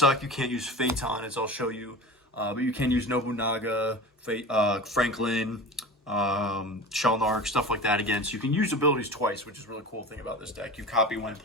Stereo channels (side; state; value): both; normal; correlation 0.33